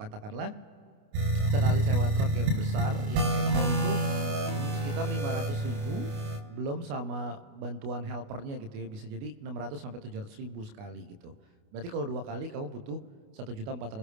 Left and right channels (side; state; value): left; late; 29 ms